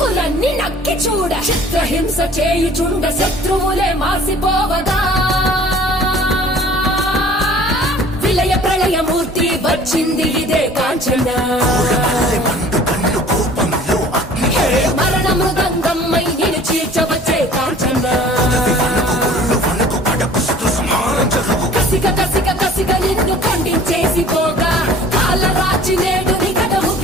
నక్కి చూడ చిత్రహింస చేయుచుండ శత్రువులే మాసిపోవగా విలయ ప్రళయమూర్తి వచ్చింది ఇదే కాంచన. మరణ మృదంగమ్మై నిన్ను చీల్చవచ్చే కాంచన. కసిగ కసిగ కసిగ నిన్ను ఖండించేసి పోగా కాలరాచి నేడు నిగడ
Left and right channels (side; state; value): both; normal; correlation 0.49